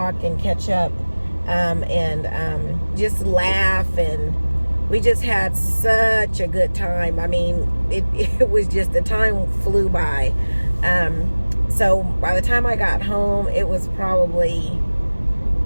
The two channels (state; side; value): inverted; both; correlation -1.00